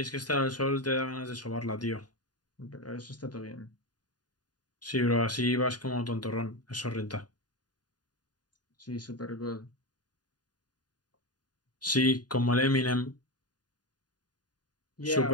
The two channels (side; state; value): right; late; 0.69 ms